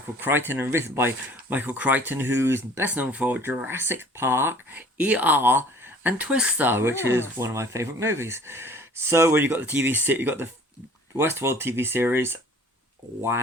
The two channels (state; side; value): normal; both; correlation 0.50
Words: Crichton and written by Michael Crichton, who's best known for Jurassic Park, ER, and Twister, which is one of my favourite movies. So, when you got the you got the Westworld TV series,